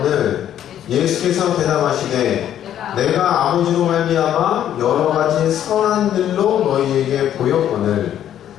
예수께서 대답하시되 내가 아버지로 말미암아 여러 가지 선한 일로 너희에게 보였거늘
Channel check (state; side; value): quieter; right; 10.8 dB